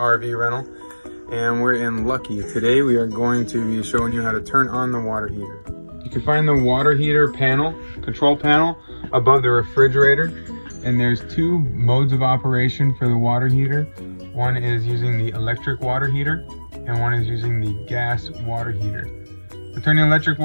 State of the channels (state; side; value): inverted; both; correlation -1.00